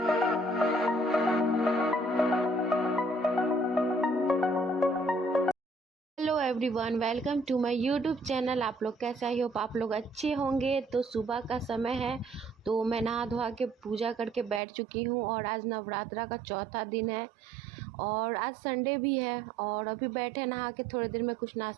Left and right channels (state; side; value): drops out; left; at 14.6 s